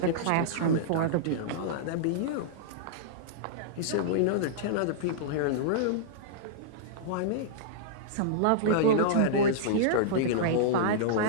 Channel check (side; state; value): both; different; correlation -0.02